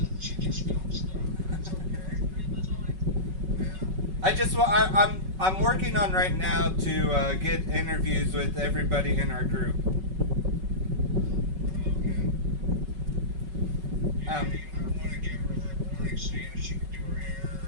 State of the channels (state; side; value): late; left; 5.3 ms